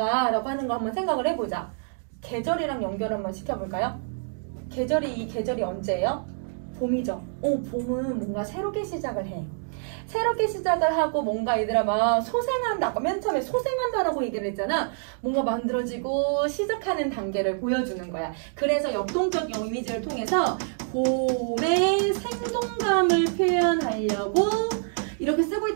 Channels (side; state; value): left; silent; digital silence